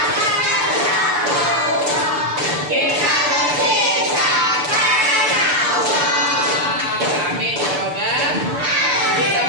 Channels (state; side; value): late; left; 6.9 ms